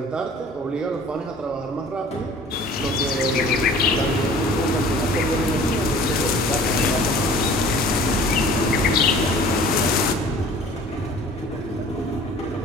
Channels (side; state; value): both; normal; correlation 0.47